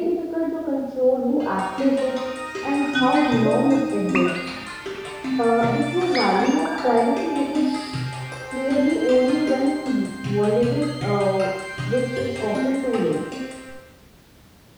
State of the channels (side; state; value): both; identical; correlation 1.00